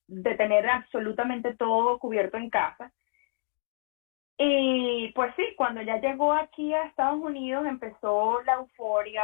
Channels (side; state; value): right; silent; digital silence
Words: de tener absolutamente todo cubierto en casa. Y pues sí, cuando ya llegó aquí a Estados Unidos empezó la euforia,